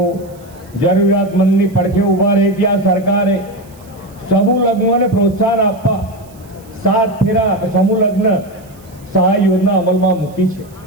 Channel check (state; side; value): noise; right; hiss, 27 dB below the sound